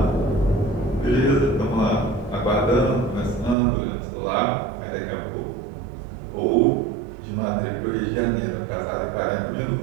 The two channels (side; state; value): left; drops out; at 3.6 s